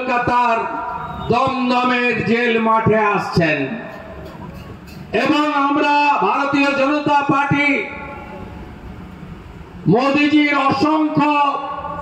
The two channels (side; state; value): both; identical; correlation 1.00